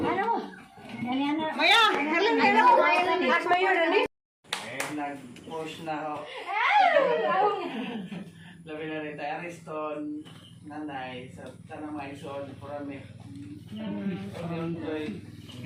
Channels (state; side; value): identical; both; correlation 1.00